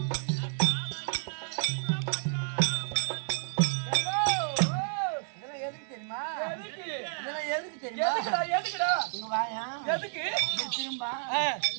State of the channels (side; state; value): left; silent; 57 dB below the other